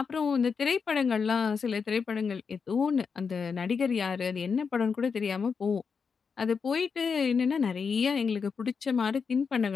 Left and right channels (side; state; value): right; quieter; 5.7 dB